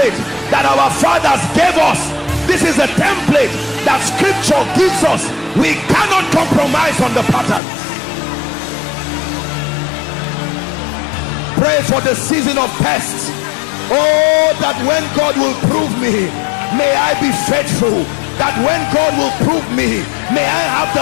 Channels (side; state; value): right; drops out; at 7.6 s